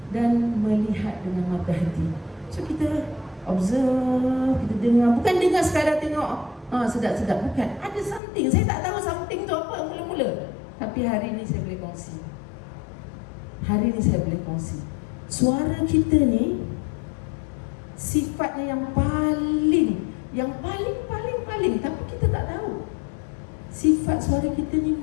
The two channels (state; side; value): drops out; right; at 8.2 s